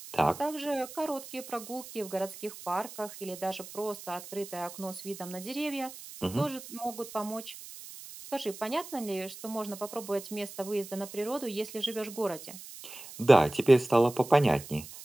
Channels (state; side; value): noise; right; hiss, 14 dB below the sound